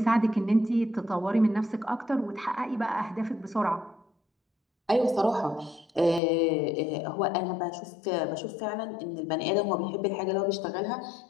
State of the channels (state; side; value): drops out; right; at 6.2 s